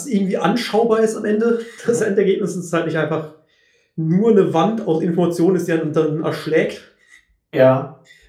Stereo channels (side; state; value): both; identical; correlation 1.00